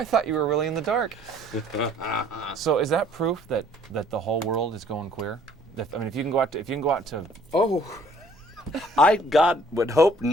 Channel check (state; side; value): normal; both; correlation 0.58